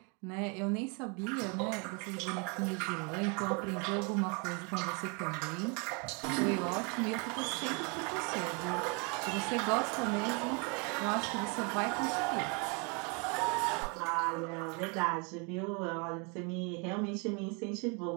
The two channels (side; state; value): left; quieter; 33.3 dB